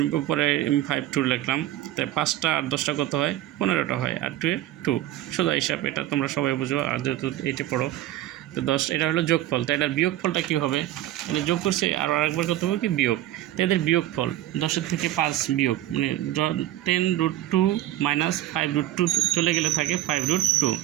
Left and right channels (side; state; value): left; quieter; 14.0 dB